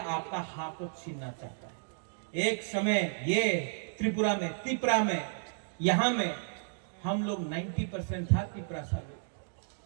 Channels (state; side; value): silent; left; digital silence